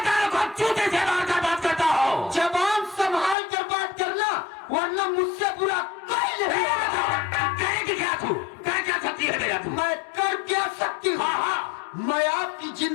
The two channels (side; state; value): right; drops out; at 3.4 s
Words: जबान संभाल कर बात करना, वरना मुझसे बुरा कोई नहीं करेगी क्या तू? कर क्या सकती है मेरा तू? मैं कर क्या सकती हूँ? मैं आपकी